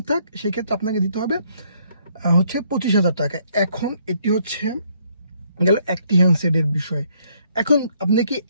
থাক, সেক্ষেত্রে আপনাকে দিতে হবে হচ্ছে 25,000 টাকা। এখন এটি হচ্ছে গেল একটি হ্যান্ডসেটের বিষয়। এখন আপনি কি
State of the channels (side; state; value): both; inverted; correlation -0.68